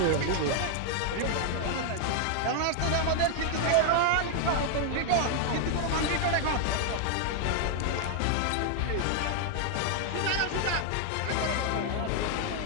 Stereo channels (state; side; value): different; both; correlation 0.00